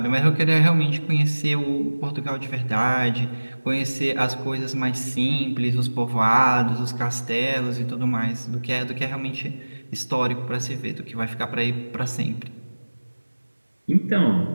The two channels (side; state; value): both; inverted; correlation -1.00